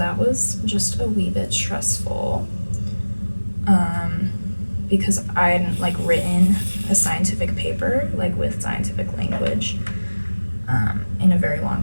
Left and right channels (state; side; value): inverted; both; correlation -1.00